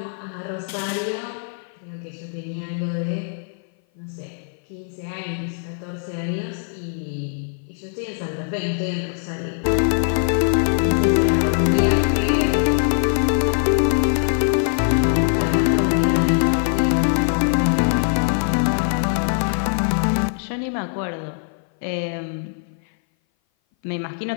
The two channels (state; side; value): silent; right; 58 dB below the other